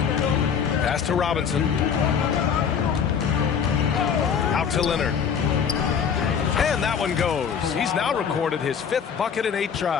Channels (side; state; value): right; quieter; 7.1 dB